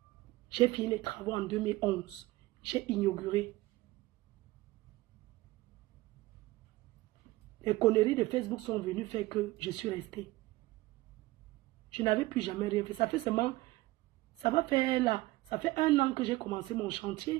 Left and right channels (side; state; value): left; quieter; 19.4 dB